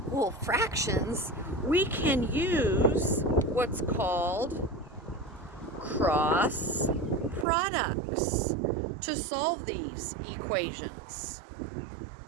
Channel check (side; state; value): left; drops out; at 7.5 s